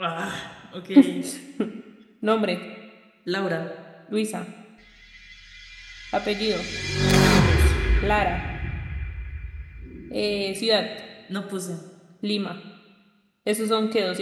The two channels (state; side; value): identical; both; correlation 1.00